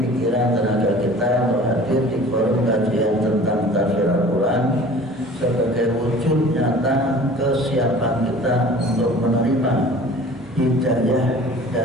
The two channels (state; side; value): normal; both; correlation 0.45